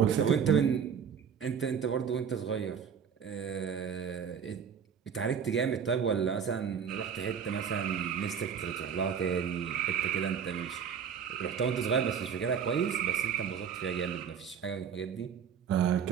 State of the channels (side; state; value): left; quieter; 7.4 dB